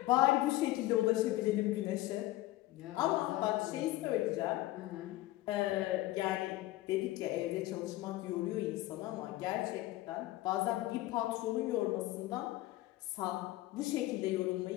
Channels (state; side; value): quieter; right; 17.1 dB